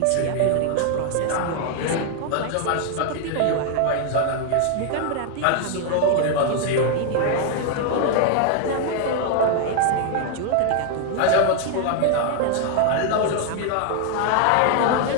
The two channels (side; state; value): both; different; correlation 0.00